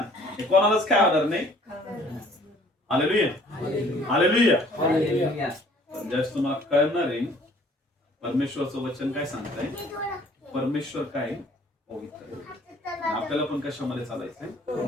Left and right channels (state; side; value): normal; both; correlation 0.56